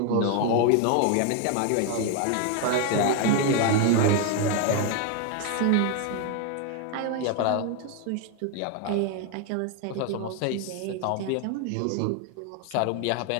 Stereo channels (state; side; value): different; both; correlation 0.01